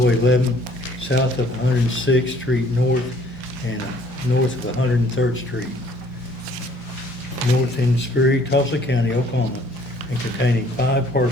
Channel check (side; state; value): both; normal; correlation 0.59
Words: 11, south of 106th Street North, and north of 103rd Street, north in Sperry, Tulsa County, Oklahoma, and containing 5